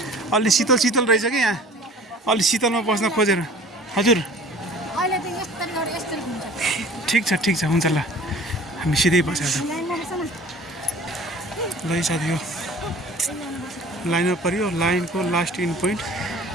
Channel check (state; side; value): normal; both; correlation 0.47